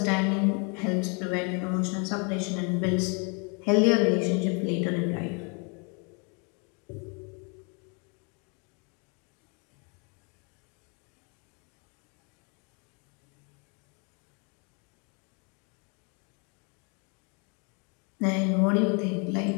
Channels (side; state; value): right; quieter; 34.6 dB